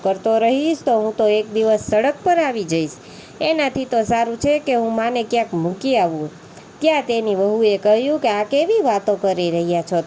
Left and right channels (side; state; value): both; identical; correlation 1.00